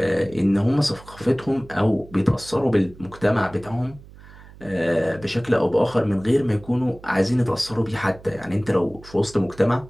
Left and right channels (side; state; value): right; noise; hum, 20 dB below the sound